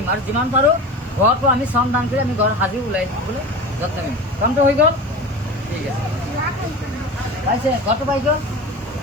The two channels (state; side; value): normal; both; correlation 0.31